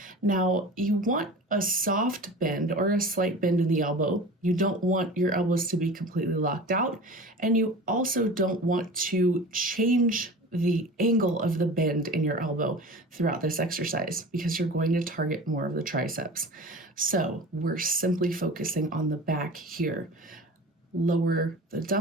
Now, you want a soft bend or a slight bend in the elbow. You don't want your elbows to be completely locked out, and you also don't want to change the angle of the bend in your elbow throughout this exercise because you're going to target more of the triceps. So we're simply focusing on the back here. Lower the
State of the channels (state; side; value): normal; both; correlation 0.36